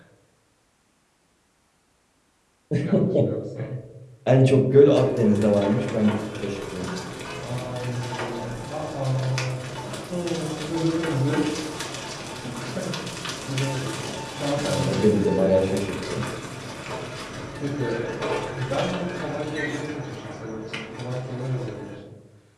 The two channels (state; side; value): identical; both; correlation 1.00